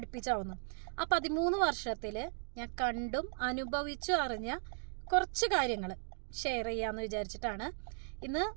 ആ 13 വർഷത്തിൽ ഞാൻ കണ്ടും അനുഭവിച്ചും അറിഞ്ഞ കുറച്ച് കാര്യങ്ങൾ ഷെയർ ചെയ്യാമെന്ന് വിചാരിച്ചിട്ടാണ്. ഇന്ന്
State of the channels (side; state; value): left; silent; digital silence